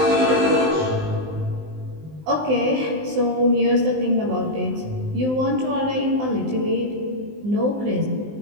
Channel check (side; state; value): left; late; 19 ms